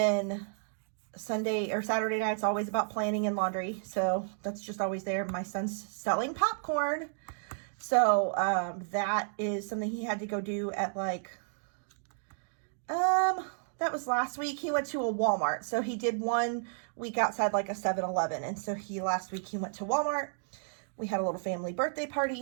Sunday or Saturday night's always about planning and laundry. So that's just always there. My son's selling popcorn. So that is something he had to go do at like, that was last week. He went to a Walmart. So he did 1 week outside like a 7-Eleven. And so last week he went to Walmart. We had a little family birthday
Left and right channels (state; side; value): silent; left; digital silence